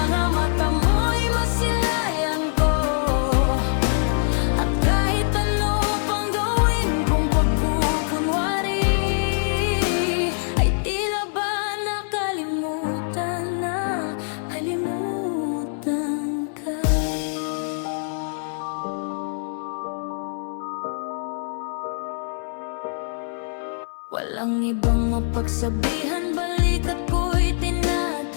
mata mo'y masilayan ko. At kahit ano pang gawin kong pagkukunwari, ay tila ba nakalimutan na, kalimutan ka. Walang ibang mapagsabihan, balikat ko'y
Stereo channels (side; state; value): right; silent; 63 dB below the other